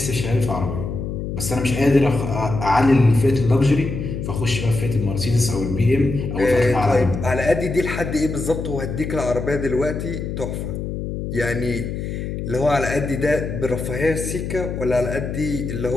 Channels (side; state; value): left; noise; hum, 5 dB below the sound